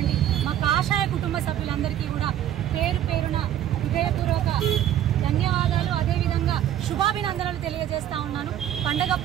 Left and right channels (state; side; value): quieter; left; 11.3 dB